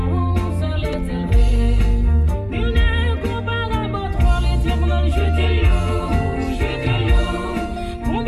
c'est l'Éternel. Il n'est comparable à toi, l'Éternel, je te loue, je te loue.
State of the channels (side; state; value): both; identical; correlation 1.00